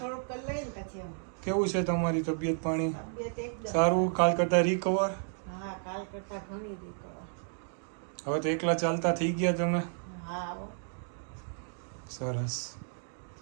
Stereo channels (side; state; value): left; silent; digital silence